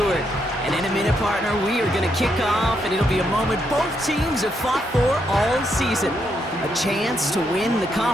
And in a minute, partner, we are going to kick off, and it'll be a moment both teams have fought for all season. A chance to win the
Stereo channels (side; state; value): both; normal; correlation 0.78